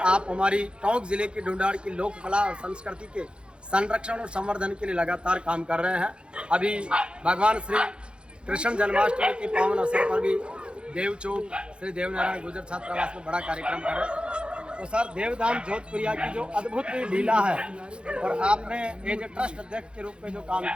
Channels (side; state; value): left; late; 0.055 ms